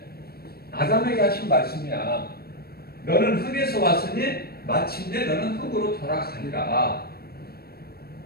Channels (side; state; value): right; late; 0.45 ms